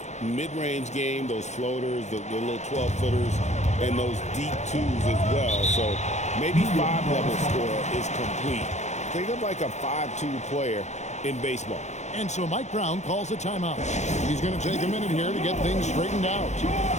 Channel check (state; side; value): late; right; 0.33 ms